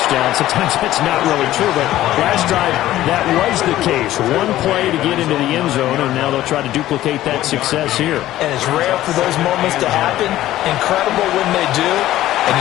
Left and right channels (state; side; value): quieter; right; 14.4 dB